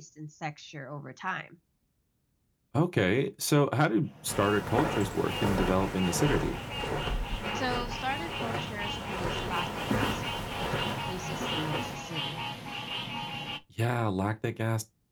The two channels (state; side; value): identical; both; correlation 1.00